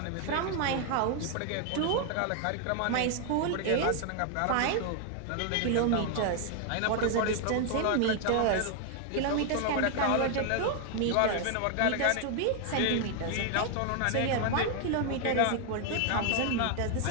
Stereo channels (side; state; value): both; different; correlation 0.00